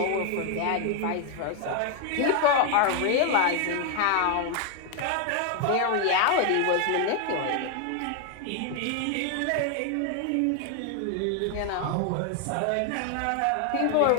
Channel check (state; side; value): different; both; correlation 0.00